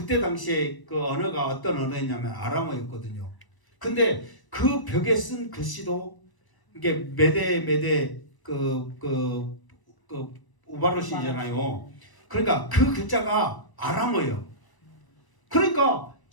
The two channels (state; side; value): late; right; 1.0 ms